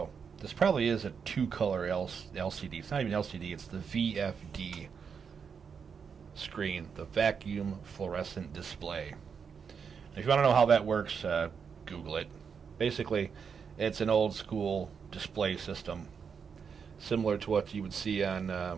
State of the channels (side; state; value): left; quieter; 6.4 dB